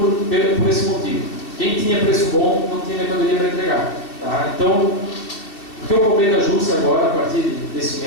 por esse motivo. Quem tinha preço bom não tinha mercadoria para entregar. Tá? Então, o que eu cobrei da Júcia agora, a partir desse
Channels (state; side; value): late; right; 2.6 ms